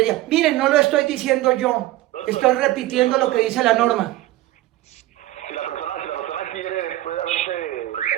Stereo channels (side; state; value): left; quieter; 16.2 dB